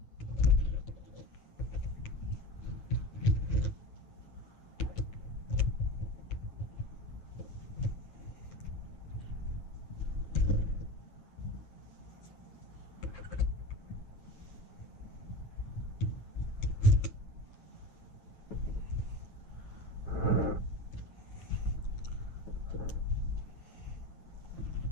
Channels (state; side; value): late; right; 8.2 ms